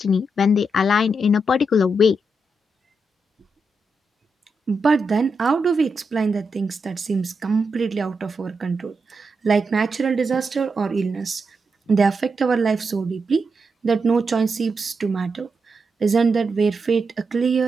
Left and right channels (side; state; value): both; normal; correlation 0.85